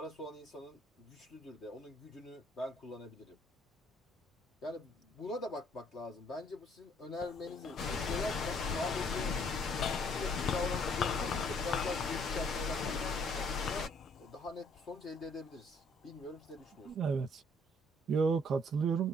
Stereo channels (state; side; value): normal; both; correlation 0.63